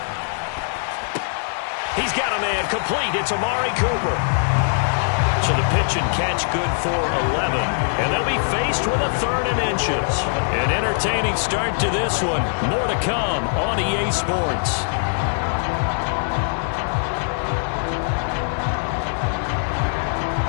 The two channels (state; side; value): silent; right; digital silence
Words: He's got a man complete. It's Amari Cooper. So the pitch and catch good for 11. And they'll be faced with a 3rd and inches. An entertaining start to this one. More to come on EA Sports.